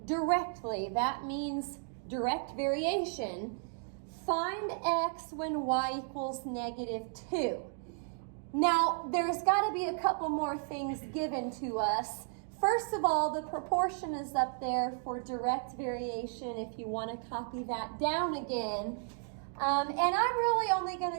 directly, that means direct variation. Find x when y equals -2. Now, there's got to be a couple more things given to us. First of all, the proportion is up there for direct variation if you want to copy that down again. And I'm really only going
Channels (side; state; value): left; silent; 55 dB below the other